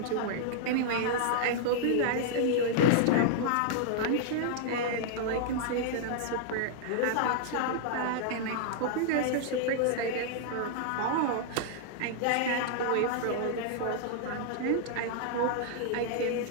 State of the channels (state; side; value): different; both; correlation -0.01